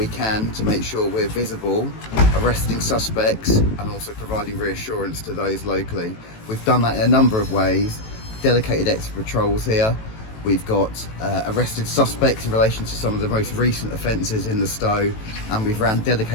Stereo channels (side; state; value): right; late; 18 ms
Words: can to make sure we're visible, arresting suspects and also providing reassurance to those locally. We've done that in a number of ways. Dedicated extra patrols here. We've got arrested suspects in relation to some of the most recent offences in the Stowe, and we've ran